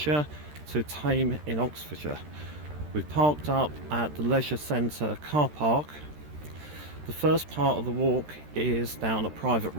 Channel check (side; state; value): left; late; 13 ms